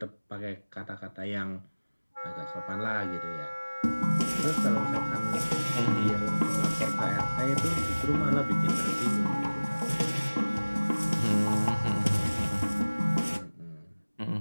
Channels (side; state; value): both; inverted; correlation -1.00